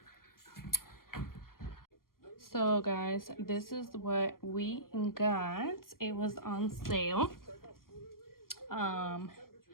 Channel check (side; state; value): right; late; 0.92 ms